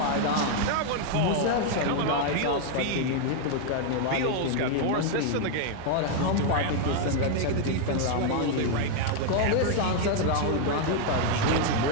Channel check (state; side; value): different; both; correlation 0.00